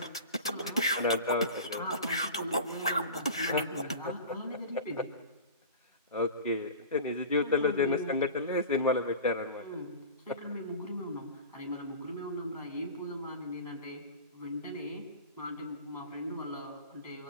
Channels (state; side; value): inverted; both; correlation -0.34